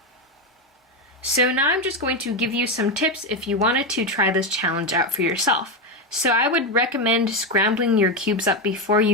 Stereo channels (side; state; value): both; normal; correlation 0.10